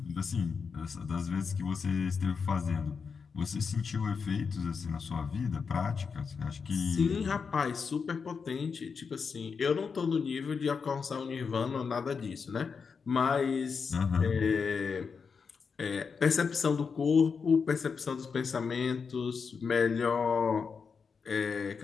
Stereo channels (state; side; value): quieter; right; 5.6 dB